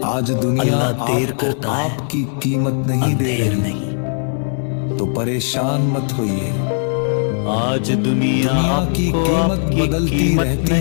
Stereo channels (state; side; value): silent; right; digital silence